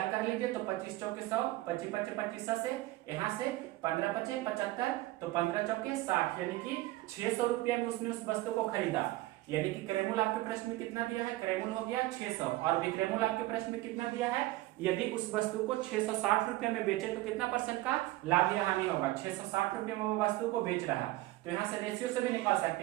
कर लीजिए, तो 25 चौके 100, 25 पचे 25 से, यहाँ से 15 पचे 75, तो 15 चौके 60, यानी कि 600 रुपया में उसने उस वस्तु को खरीदा। यानी कि क्रयमूल्य आपके प्रश्न में कितना दिया है, क्रयमूल्य हो गया 600, और विक्रयमूल्य आपके प्रश्न में कितना दिया है, यदि उस वस्तु को 660 रुपए में बेचे तो कितना परसेंट का लाभ या हानि होगा। 660 रुपए में वो वस्तु को बेच रहा है, तो यहाँ से रेशियो से भी निकाल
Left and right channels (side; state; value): left; quieter; 18.0 dB